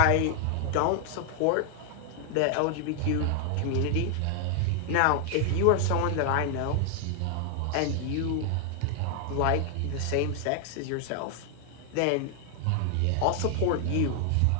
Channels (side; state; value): both; different; correlation 0.00